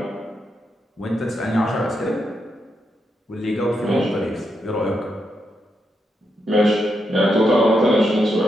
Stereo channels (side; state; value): both; normal; correlation 0.83